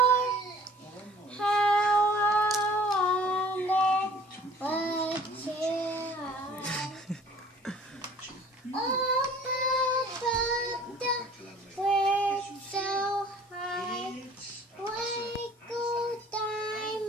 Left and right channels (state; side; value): normal; both; correlation 0.51